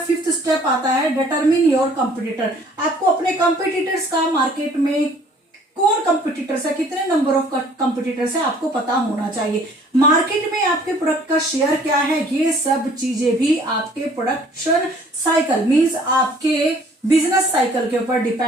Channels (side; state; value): both; normal; correlation 0.56